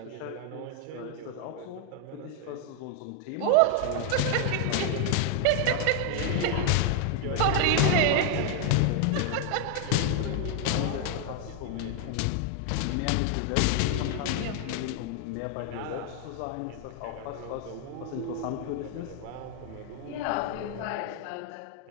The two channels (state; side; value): different; both; correlation 0.01